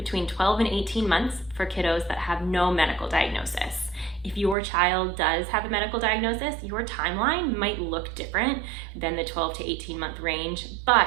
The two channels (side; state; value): left; drops out; at 4.5 s